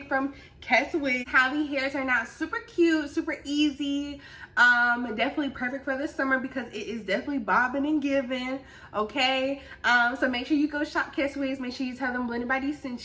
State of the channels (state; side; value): identical; both; correlation 1.00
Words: from Keswigs. How the hair turned out super cute, super easy. Definitely perfect for the summer because it is definitely bobbing and giving. Okay. So make sure you go shop Keswigs. Make sure you tell them Blended by D